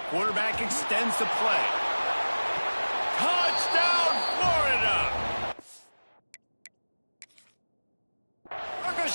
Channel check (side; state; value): both; inverted; correlation -1.00